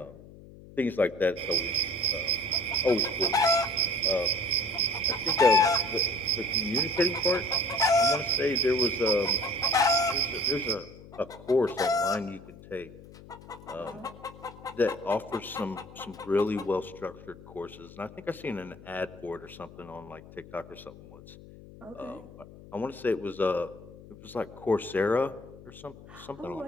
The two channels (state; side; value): noise; left; hum, 19 dB below the sound